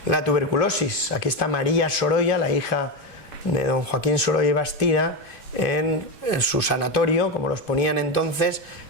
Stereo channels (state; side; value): late; right; 2.5 ms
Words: La tuberculosis. Aquí está María Sorolla, la hija de don Joaquín Sorolla y Bastida, en su sanatorio, como los ponían entonces,